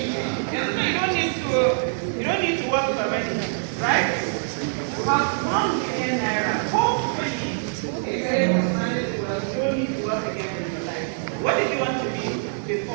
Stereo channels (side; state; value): left; silent; 62 dB below the other